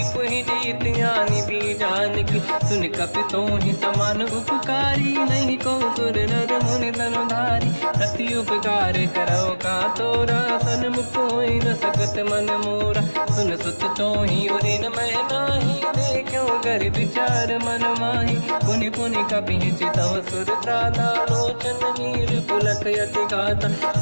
जीत ज्ञानी भी जान की। सुन कपि तोहि समान उपकारी, नहीं को सुर नर मुनि तनुधारी। प्रति उपकार करो का तोरा, सन्मुख होई न सकत मन मोरा। सुन सुत तोहि उदिन मैं नाही, देखो कर विचार मन माही। पुनि पुनि कपि चितव सुर त्राता, लोचन नीर पुलक यति गाता।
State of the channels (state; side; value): inverted; both; correlation -1.00